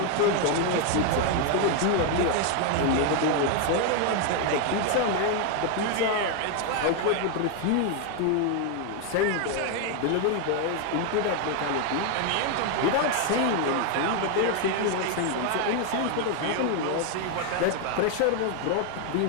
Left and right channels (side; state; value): both; different; correlation 0.01